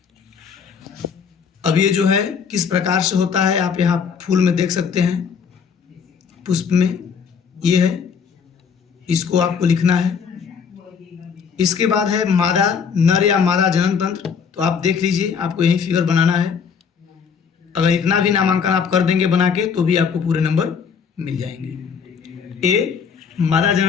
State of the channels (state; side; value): quieter; right; 6.5 dB